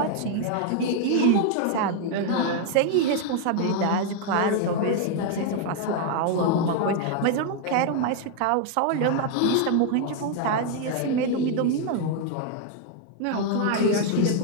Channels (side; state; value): both; different; correlation 0.00